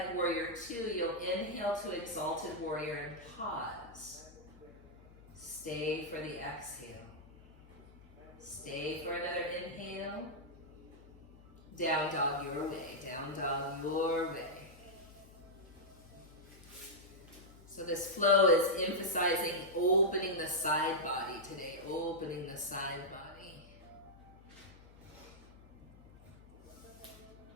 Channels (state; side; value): noise; left; hum, 22 dB below the sound